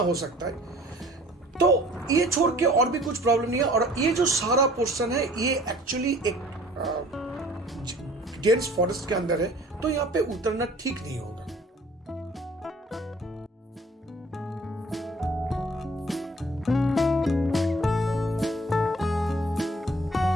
सकता है। तो ये छोड़ के और भी कुछ प्रॉब्लम नहीं है। और ये जो सारा पोर्शन है, ये एक्चुअली एक डेंस फॉरेस्ट के अंदर है, तो यहाँ पे उतरना ठीक नहीं होगा।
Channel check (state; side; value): normal; both; correlation 0.52